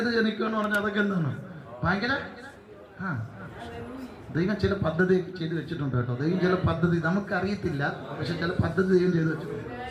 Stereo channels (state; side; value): identical; both; correlation 1.00